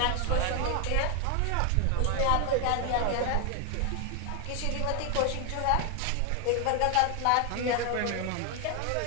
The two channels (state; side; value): different; both; correlation 0.00